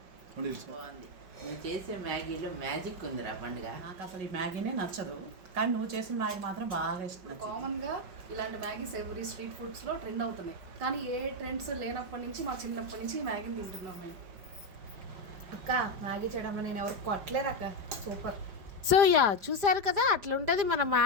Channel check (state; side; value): late; left; 4.9 ms